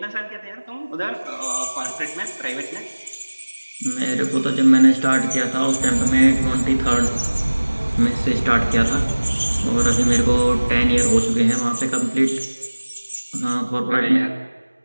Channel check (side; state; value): both; inverted; correlation -1.00